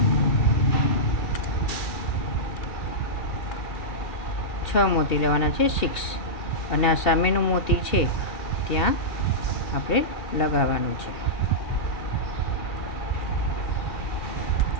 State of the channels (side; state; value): right; late; 2.7 ms